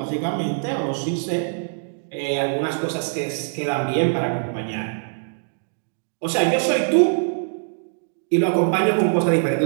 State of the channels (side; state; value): left; silent; digital silence